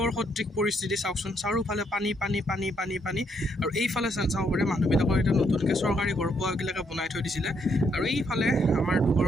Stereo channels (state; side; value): normal; both; correlation 0.73